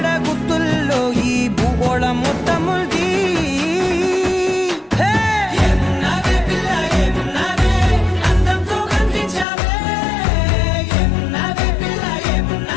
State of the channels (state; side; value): drops out; right; at 9.5 s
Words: గుత్తుల్లో ఈ భూగోళం మొత్తముంది ఏమున్నావే పిల్ల ఏమున్నావే అందంతో కనిపించావే ఏమున్నావే పిల్ల